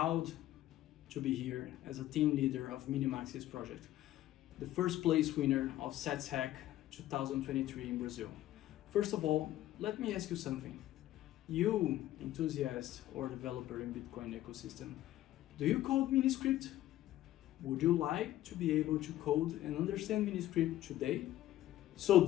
to be here as a team leader of Minimaxis project, the first place winner of Satshack 2023 in Brazil. First of all, let me ask you something. You, enthusiast or developer in Bitcoin ecosystem, do you code Miniscript? Would you like to be able to code and understand Miniscript today? So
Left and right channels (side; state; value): right; quieter; 14.1 dB